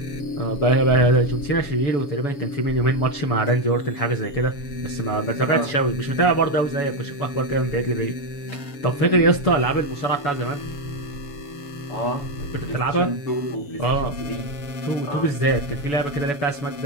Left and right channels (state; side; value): late; right; 7.0 ms